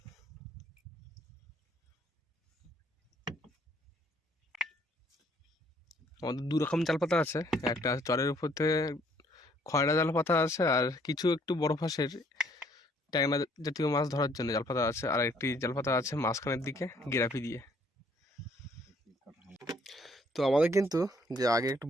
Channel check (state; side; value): normal; both; correlation 0.64